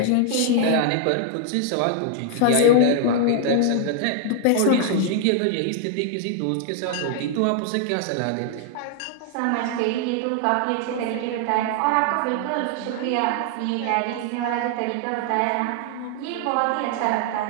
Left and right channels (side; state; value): both; different; correlation 0.00